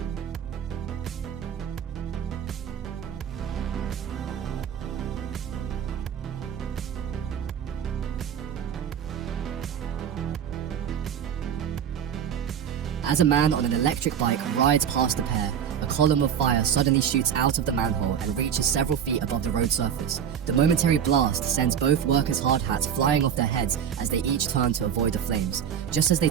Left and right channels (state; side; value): quieter; left; 8.6 dB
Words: As a man on an electric bike rides past the pair, a column of fire suddenly shoots out of the manhole and reaches several feet above the road surface. The momentary blast sends both workers' hard hats flying off their heads as they each turn to avoid the flames. Just as they